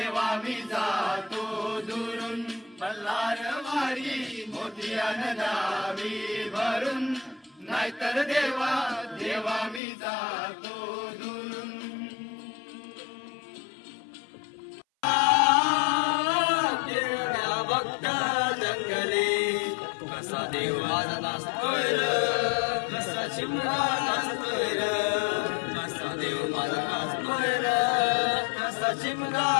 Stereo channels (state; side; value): drops out; right; at 9.8 s